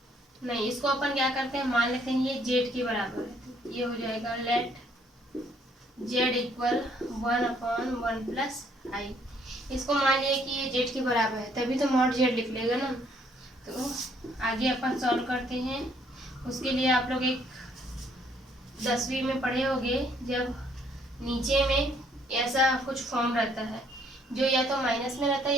नहीं इसको अपन क्या करते हैं, मान लेते हैं ये जेड के बराबर है। तो ये हो जाएगा late Z equal 1/1 plus i. इसको मान लिया कि ये जेड के बराबर है, तभी तो मॉड जेड लिख लेगा ना। तो आगे अपन सॉल्व करते हैं। उसके लिए आप लोग एक 10वीं में पढ़े होंगे, जब नीचे में ऐसा कुछ फॉर्म रहता है जो या तो माइनस में रहता है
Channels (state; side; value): normal; both; correlation 0.66